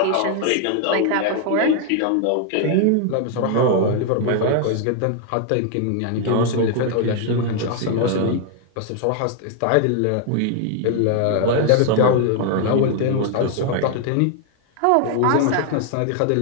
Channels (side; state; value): both; different; correlation 0.00